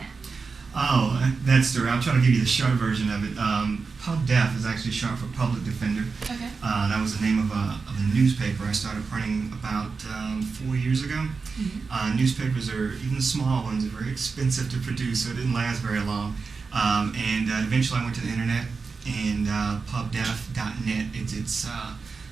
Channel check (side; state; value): left; quieter; 4.7 dB